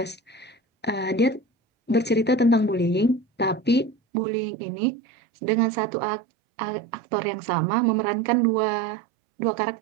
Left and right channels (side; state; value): left; drops out; at 4.0 s